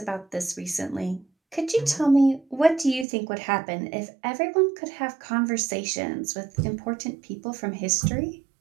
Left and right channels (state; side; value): drops out; left; at 3.1 s